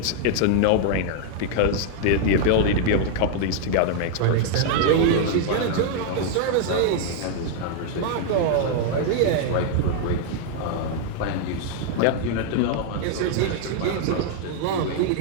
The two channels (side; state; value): both; different; correlation 0.00